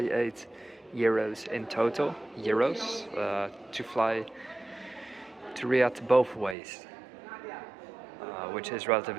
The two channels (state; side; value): drops out; left; at 6.6 s